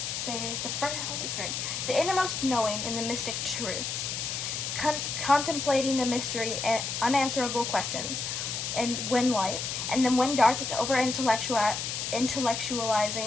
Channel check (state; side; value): noise; left; hiss, 3 dB below the sound